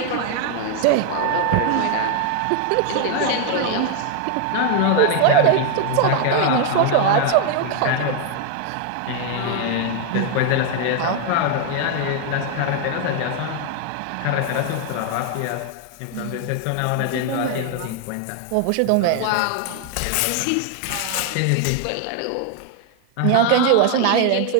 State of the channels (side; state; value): both; different; correlation 0.00